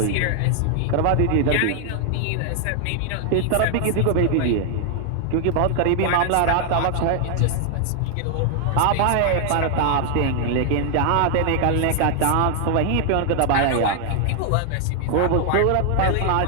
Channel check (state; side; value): different; both; correlation 0.00